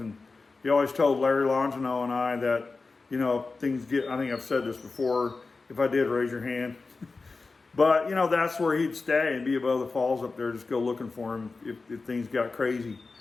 he always told Larry Longino and I that, things get, I think I've said this before, if I did, raise your hand. But, that's where he'd stay and be above the falls up there. Just go looking for him if things got crazy.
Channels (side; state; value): right; quieter; 4.0 dB